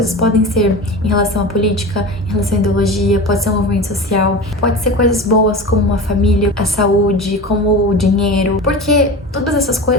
podem ser em relação à política, em relação à ideologia, pode ser um movimento social, pode ser coisas boas como uma família, a saúde, como o dinheiro, porque todas essas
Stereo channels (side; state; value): both; normal; correlation 0.30